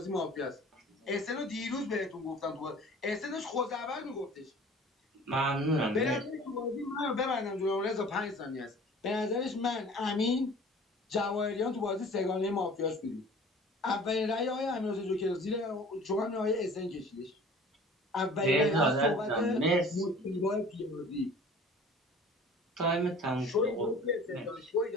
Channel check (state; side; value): normal; both; correlation 0.46